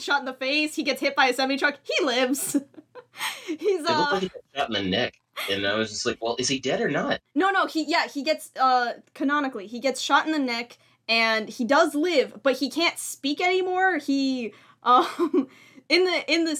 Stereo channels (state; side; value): identical; both; correlation 1.00